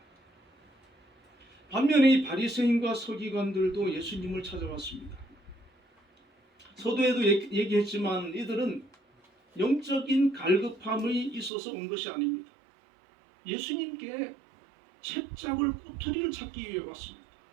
반면에 이 바리새인과 서기관들도 예수님을 찾아왔습니다. 서두에도 얘기했지만 이들은 영적인 갈급함이 있어서 온 것이 아닙니다. 예수님께 채잡을 꼬투리를 찾기 위해 왔습니다.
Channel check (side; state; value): left; drops out; at 11.5 s